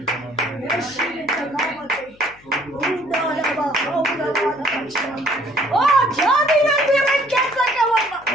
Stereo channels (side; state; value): left; noise; hum, 27 dB below the sound